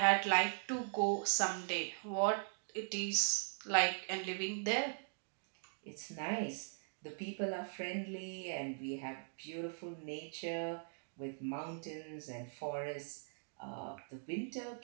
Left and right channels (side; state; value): left; silent; digital silence